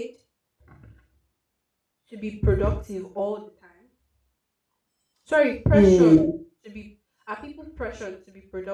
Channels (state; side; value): identical; both; correlation 1.00